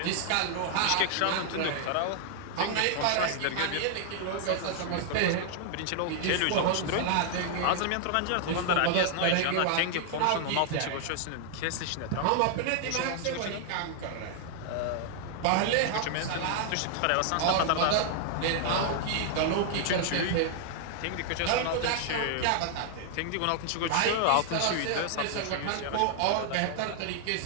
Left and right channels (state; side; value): different; both; correlation 0.00